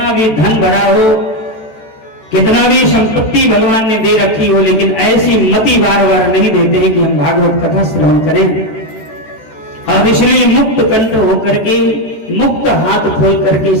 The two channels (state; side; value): late; right; 14 ms